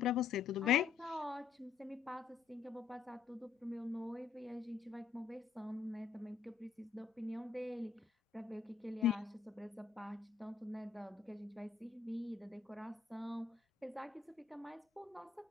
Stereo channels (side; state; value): right; quieter; 6.0 dB